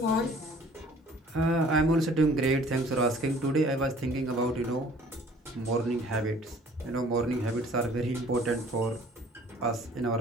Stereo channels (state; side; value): normal; both; correlation 0.53